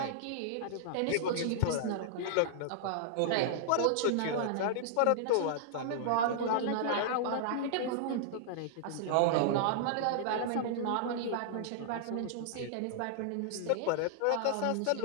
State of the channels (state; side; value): different; both; correlation -0.01